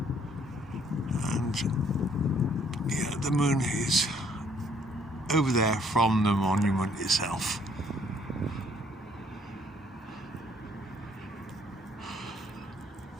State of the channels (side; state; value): both; normal; correlation 0.64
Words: and yeah, the moon is over there from the monument itself.